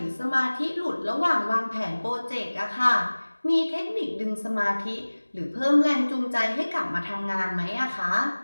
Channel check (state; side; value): inverted; both; correlation -1.00